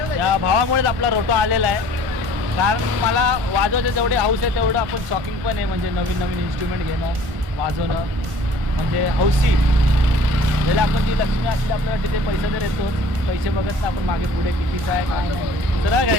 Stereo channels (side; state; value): left; late; 1.5 ms